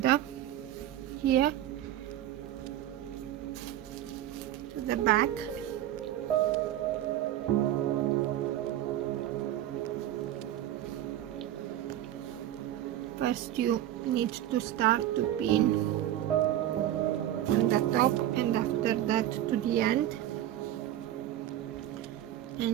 here to the back. First you need to start to pin on the top and after that to the end,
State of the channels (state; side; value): quieter; left; 12.8 dB